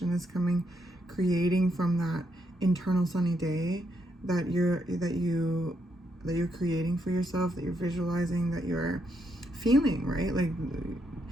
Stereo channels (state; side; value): normal; both; correlation 0.78